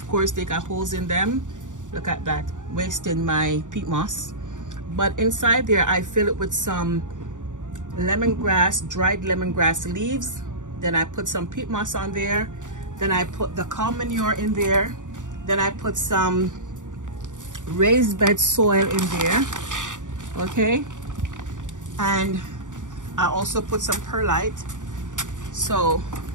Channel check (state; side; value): late; left; 0.86 ms